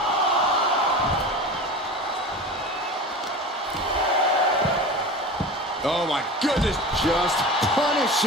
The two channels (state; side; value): normal; both; correlation 0.31